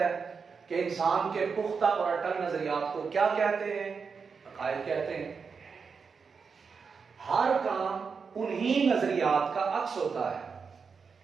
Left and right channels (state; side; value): quieter; left; 5.5 dB